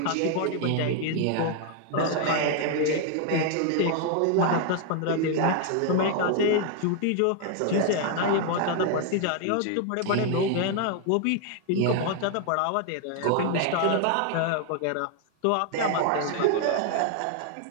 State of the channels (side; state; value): both; different; correlation 0.00